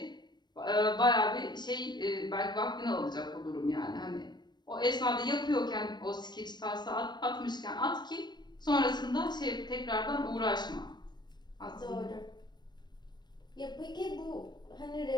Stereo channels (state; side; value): late; right; 0.21 ms